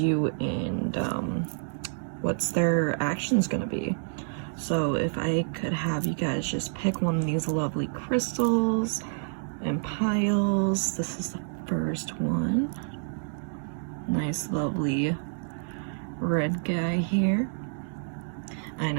and what's their actions gonna be. So if I could have you guys just pick one of these lovely crystals and piles. This is the first one. Nice lovely red guy here. I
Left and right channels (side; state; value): left; silent; digital silence